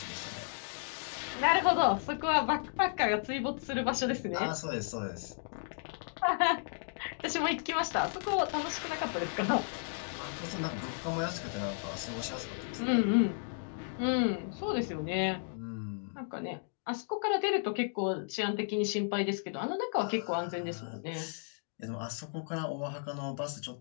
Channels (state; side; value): silent; right; digital silence